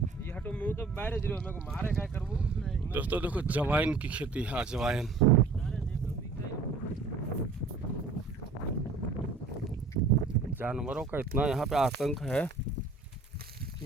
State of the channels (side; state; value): left; quieter; 4.1 dB